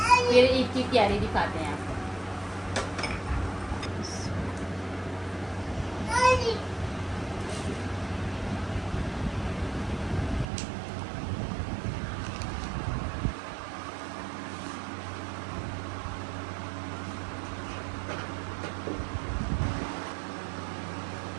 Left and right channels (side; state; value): left; drops out; at 10.5 s